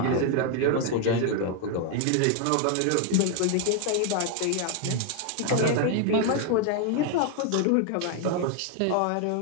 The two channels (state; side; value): different; both; correlation 0.00